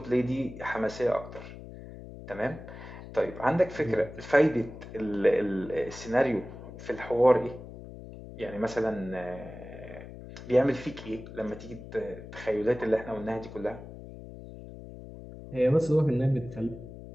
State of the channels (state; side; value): noise; left; hum, 14 dB below the sound